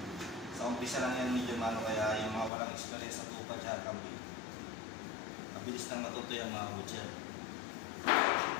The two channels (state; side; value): drops out; right; at 2.5 s